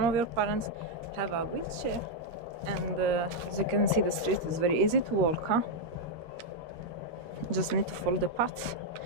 of your parents have a wheelchair. And as you can see, the street is very easy to walk, huh? Just need to follow the path.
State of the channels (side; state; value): left; late; 13 ms